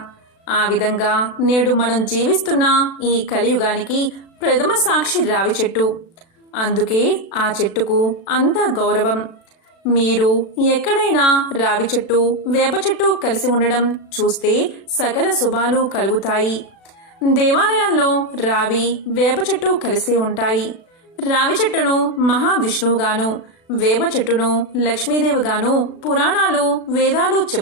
ఆ విధంగా నేడు మనం జీవిస్తున్న ఈ కలియుగానికి ప్రథమ సాక్షి రావి చెట్టు. అందుకే ఆ చెట్టుకు అంత గౌరవం. మీరు ఎక్కడైనా రావి చెట్టు, వేప చెట్టు కలిసి ఉండడం చూస్తే సకల శుభాలు కలుగుతాయి. దేవాలయాల్లో రావి, వేప చెట్టు కలిసే ఉంటాయి. రావి చెట్టును మహావిష్ణువుగాను, వేప చెట్టును లక్ష్మీదేవిగాను పురాణాలు, వేదాలు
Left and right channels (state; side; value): late; right; 36 ms